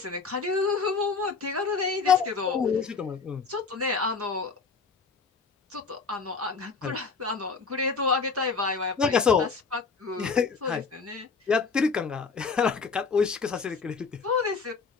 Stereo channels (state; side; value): quieter; right; 4.8 dB